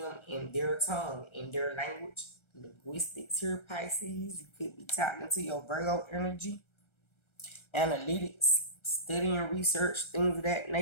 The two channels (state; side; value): late; right; 1.3 ms